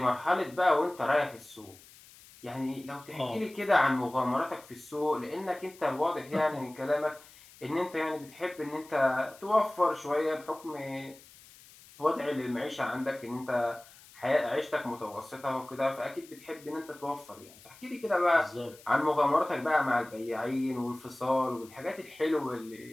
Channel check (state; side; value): noise; left; hiss, 22 dB below the sound